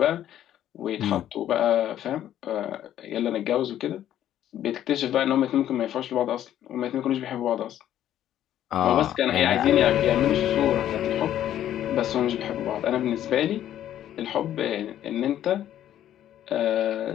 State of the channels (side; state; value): right; quieter; 11.6 dB